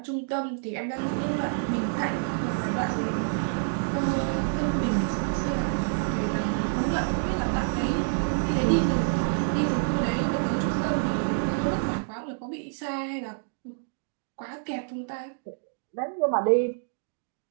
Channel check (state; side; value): silent; left; digital silence